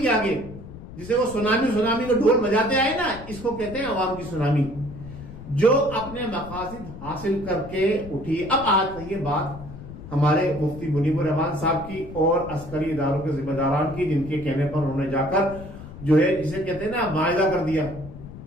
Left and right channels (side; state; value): left; noise; rumble, 14 dB below the sound